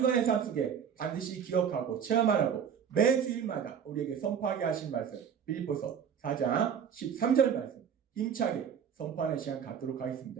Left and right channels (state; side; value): quieter; left; 7.7 dB